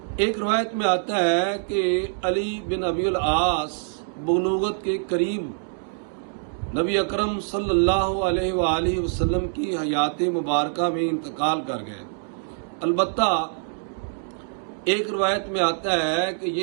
ایک روایت میں آتا ہے کہ علی بن ابی العاص بلوغت کے قریب نبی اکرم صلی اللہ علیہ وآلہ وسلم کی حیات مبارکہ میں انتقال کر گئے۔ البتہ ایک روایت میں آتا ہے کہ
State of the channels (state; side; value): silent; left; digital silence